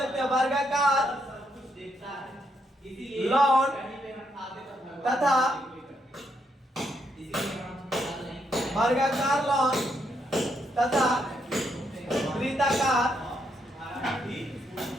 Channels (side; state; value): both; normal; correlation 0.77